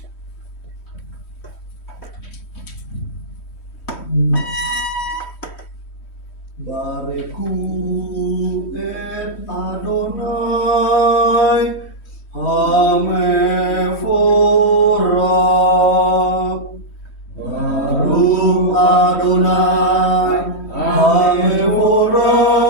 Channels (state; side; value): late; right; 3.1 ms